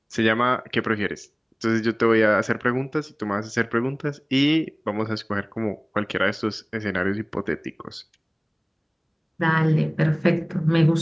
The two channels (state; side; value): identical; both; correlation 1.00